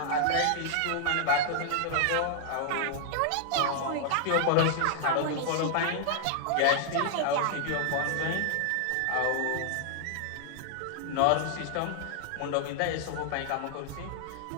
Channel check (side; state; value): both; different; correlation -0.01